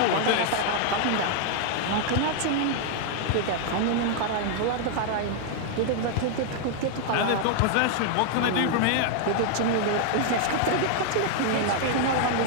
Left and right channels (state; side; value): different; both; correlation 0.00